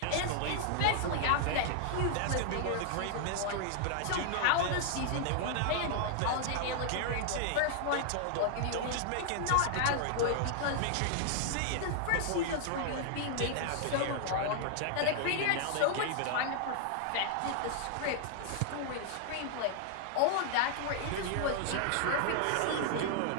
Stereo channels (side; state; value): both; different; correlation 0.00